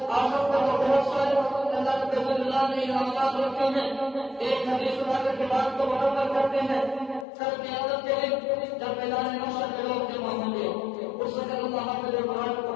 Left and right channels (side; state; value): right; drops out; at 7.2 s